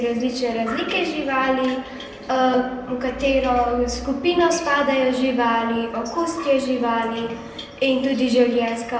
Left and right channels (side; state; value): both; identical; correlation 1.00